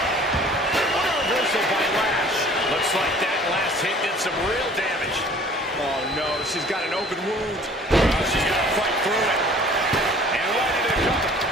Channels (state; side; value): normal; both; correlation 0.51